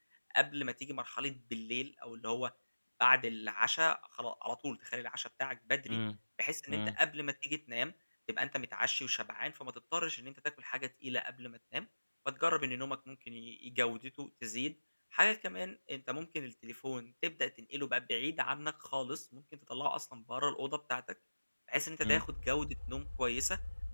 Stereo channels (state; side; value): inverted; both; correlation -1.00